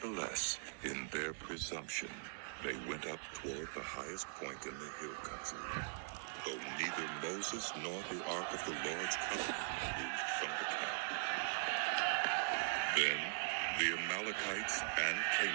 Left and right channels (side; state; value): left; silent; digital silence